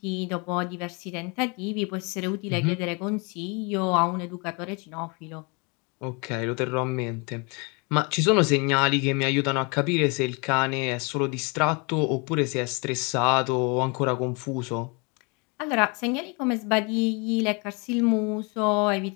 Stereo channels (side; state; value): right; quieter; 31.2 dB